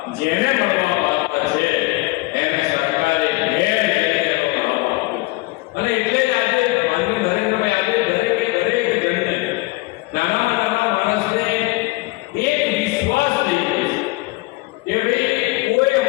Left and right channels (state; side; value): quieter; right; 22.4 dB